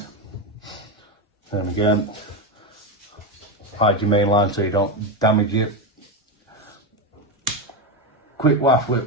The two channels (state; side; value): normal; both; correlation 0.13